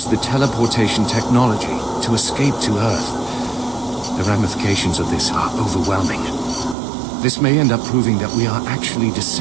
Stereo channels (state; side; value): drops out; left; at 6.8 s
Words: the teleportation technology to escape to Earth. The ramifications of this are overwhelming. This may end up proving that we are actually